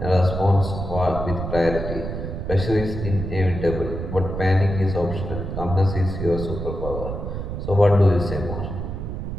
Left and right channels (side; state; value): right; noise; rumble, 5 dB below the sound